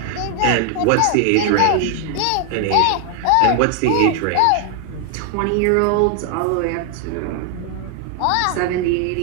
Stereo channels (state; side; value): different; both; correlation 0.00